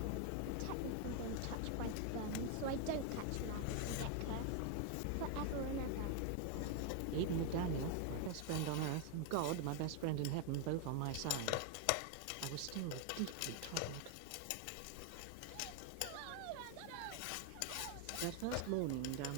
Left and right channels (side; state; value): both; different; correlation 0.00